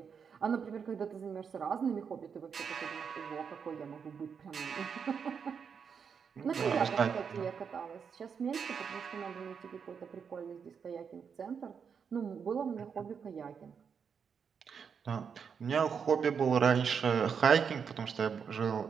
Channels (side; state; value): left; quieter; 6.6 dB